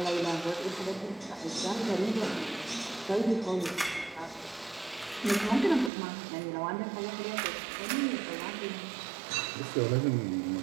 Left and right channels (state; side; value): drops out; left; at 5.9 s